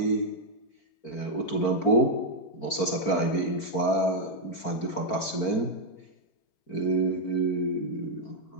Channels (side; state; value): right; late; 4.4 ms